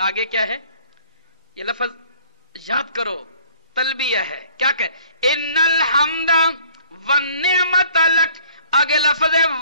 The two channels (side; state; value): both; inverted; correlation -0.55